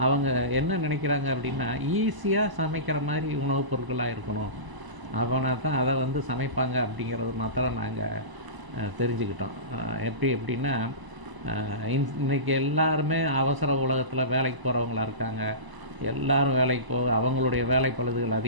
அவங்க என்ன நினைக்கிறாங்க அப்படின்னா, ஈஸியாக சமைக்கிற மாதிரி உணவுப் பொருட்களாக இருக்கணும், அவனை தான் அதை சமைப்பாங்க அப்படிங்கிறது மாத்திரம் நாங்கள் தெரிஞ்சுக்கிட்டோம். எப்படின்னா, இன்றைக்கி எல்லாருமே அவசர உலகத்தில் வேலைக்கு போகிறவங்களா இருக்காங்க. எல்லோரும் வேலைக்கு போக அவங்களுடைய வேலை பழுதுகள்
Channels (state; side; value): late; left; 1.0 ms